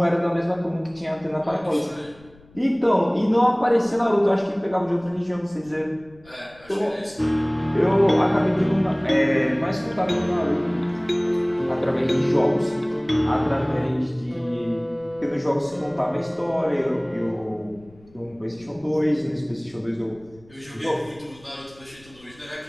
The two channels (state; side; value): noise; left; rumble, 26 dB below the sound